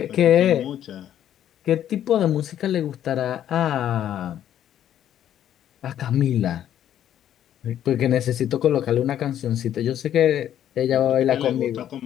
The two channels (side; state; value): right; quieter; 10.8 dB